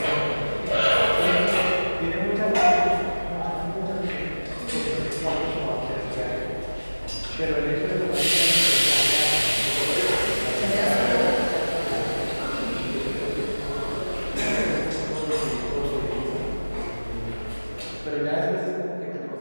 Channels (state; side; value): inverted; both; correlation -1.00